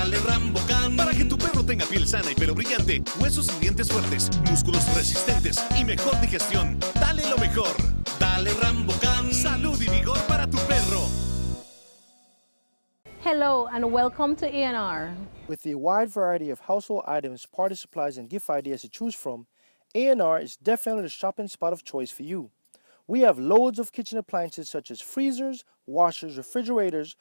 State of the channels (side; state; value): both; inverted; correlation -1.00